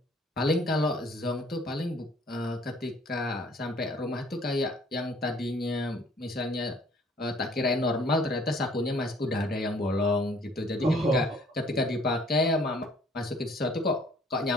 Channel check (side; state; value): both; normal; correlation 0.57